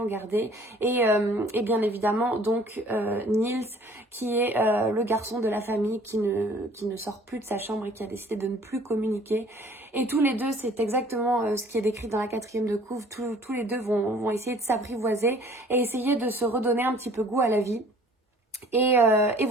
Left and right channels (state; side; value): normal; both; correlation 0.53